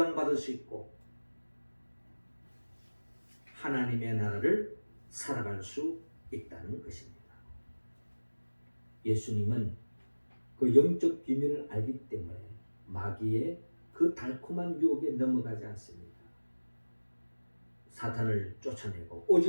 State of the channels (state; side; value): inverted; both; correlation -1.00